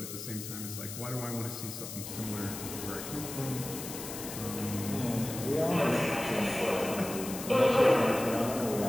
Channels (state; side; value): noise; left; hiss, 9 dB below the sound